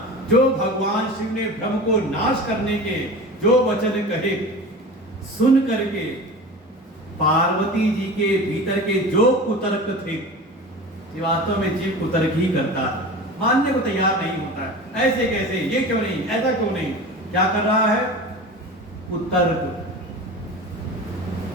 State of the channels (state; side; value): normal; both; correlation 0.33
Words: जो भगवान शिव ने भ्रम को नाश करने के जो वचन कहे, सुन करके पार्वती जी के भीतर के जो कुतर्क थे, वास्तव में जीव कुतर्क ही करता है, मानने को तैयार नहीं होता है। ऐसे कैसे, ये क्यों नहीं, ऐसा क्यों नहीं, क्या कर रहा है, कुतर्क।